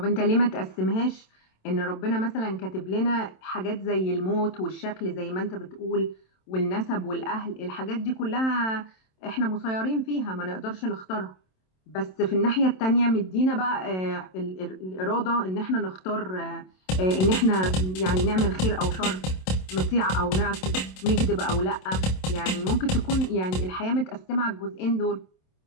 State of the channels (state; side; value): late; right; 27 ms